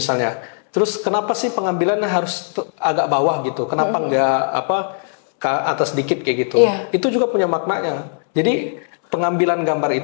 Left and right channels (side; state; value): right; silent; 67 dB below the other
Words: Terus kenapa sih pengambilannya harus agak bawah gitu? Kenapa nggak ke atas dikit kayak gitu? Iya. Itu juga punya maknanya. Jadi pengambilan gambar